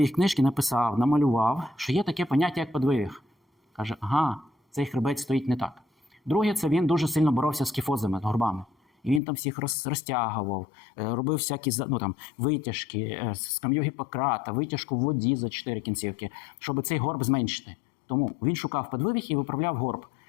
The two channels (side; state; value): right; drops out; at 9.2 s